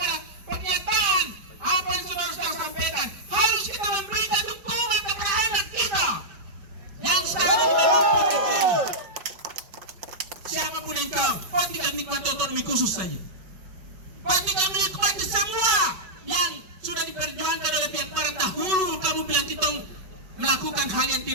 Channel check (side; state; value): left; late; 5.2 ms